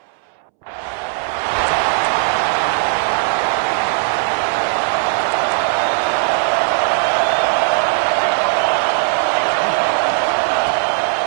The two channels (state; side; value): silent; left; 68 dB below the other